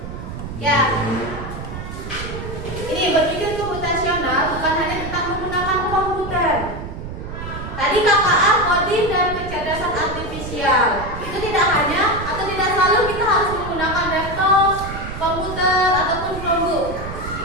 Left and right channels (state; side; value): noise; right; rumble, 9 dB below the sound